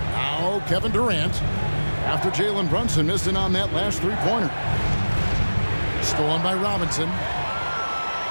Kevin Durant. after Jalen Brunson missed it on that last three-pointer. Stolen by Robinson.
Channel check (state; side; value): inverted; both; correlation -1.00